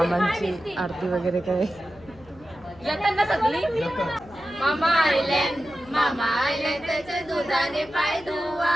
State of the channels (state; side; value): noise; left; hum, 24 dB below the sound